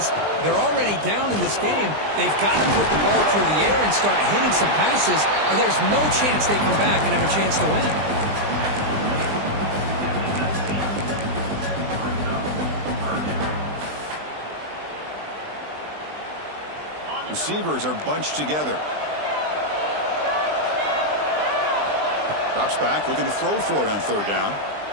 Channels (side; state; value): left; late; 20 ms